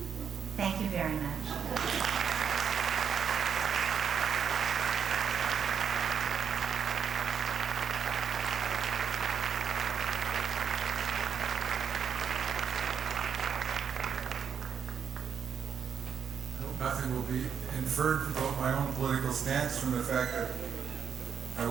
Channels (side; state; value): left; quieter; 7.3 dB